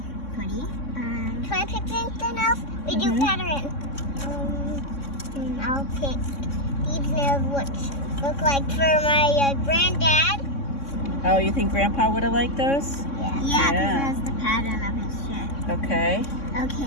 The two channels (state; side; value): late; right; 3.6 ms